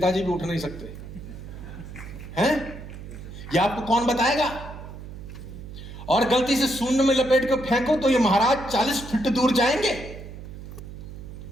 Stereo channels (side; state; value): right; noise; hum, 12 dB below the sound